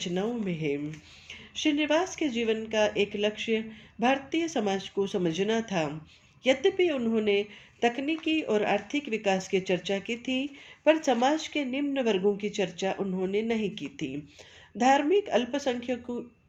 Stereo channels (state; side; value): identical; both; correlation 1.00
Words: में है। श्रीनिवास के जीवन का एक लक्ष्य भारतीय समाज को समझना था। यद्यपि उन्होंने तकनीकी और आर्थिक विकास की चर्चा की थी, पर समाज के निम्न वर्गों की चर्चा उन्होंने नहीं की थी। धार्मिक अल्पसंख्यकों